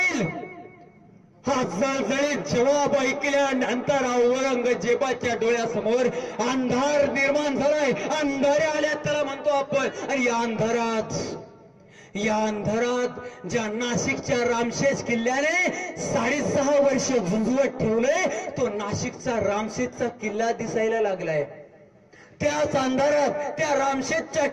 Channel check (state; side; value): identical; both; correlation 1.00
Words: हा जळजळीत जवाब ऐकल्यानंतर औरंगजेबाच्या डोळ्यासमोर अंधार निर्माण झालाय. अंधारे आल्या त्याला म्हणतो आपण. आणि या अंधारात ज्या नाशिकच्या रामशेज किल्ल्याने 6.5 वर्ष झुंजवत ठेवलंय, तो नाशिकचा रामशेजचा किल्ला दिसायला लागलाय. त्याच अंधारात त्या रामशेजच्या